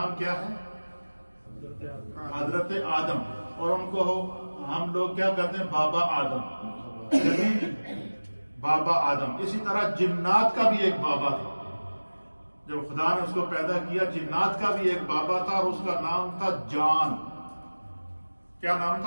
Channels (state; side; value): inverted; both; correlation -1.00